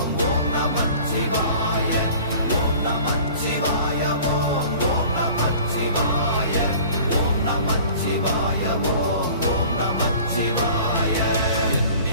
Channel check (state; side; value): inverted; both; correlation -0.45